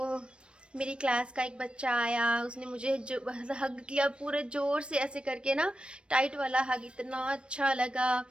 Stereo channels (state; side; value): late; left; 0.058 ms